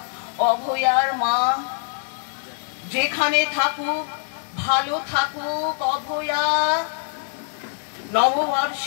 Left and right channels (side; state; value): right; silent; digital silence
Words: অভয়ার মা, যেখানে থাকুক ভালো থাকুক অভয়া।